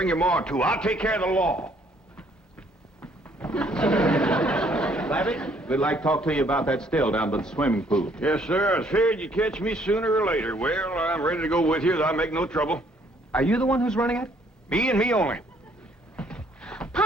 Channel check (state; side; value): normal; both; correlation 0.64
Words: your ma, too. I'll take care of the law. Savvy, we'd like to talk to you about that still down by the swimming pool. Yes, sir. I figured you'd catch me sooner or later. Well, I'm ready to go with you. I'll make no trouble. Are you the one who's running it? Me and me only.